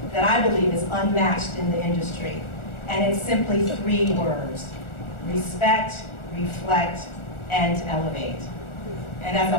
that I believe is unmatched in the industry. And it's simply 3 words: respect, reflect, and elevate. And as a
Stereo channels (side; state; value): right; late; 1.4 ms